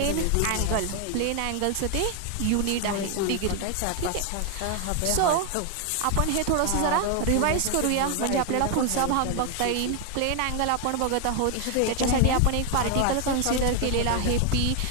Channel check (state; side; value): different; both; correlation 0.01